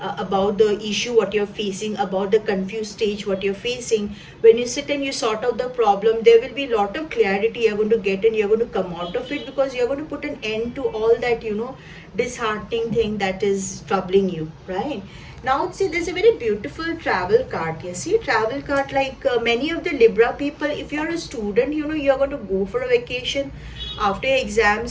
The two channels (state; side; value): identical; both; correlation 1.00